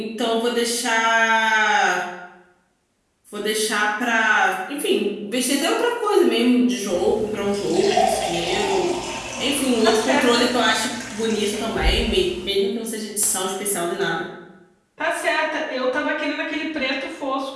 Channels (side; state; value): both; identical; correlation 1.00